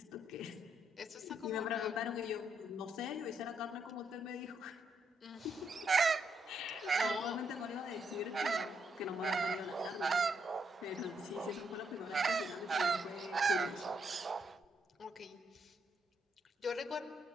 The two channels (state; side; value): normal; both; correlation 0.76